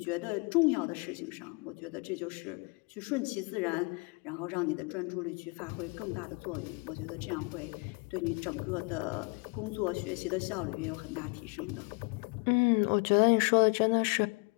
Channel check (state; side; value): quieter; right; 31.2 dB